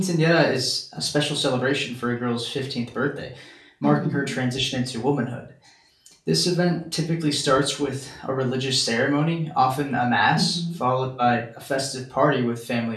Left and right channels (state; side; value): identical; both; correlation 1.00